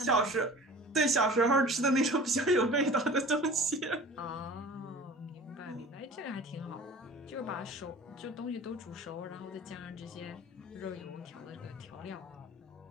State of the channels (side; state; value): both; normal; correlation 0.42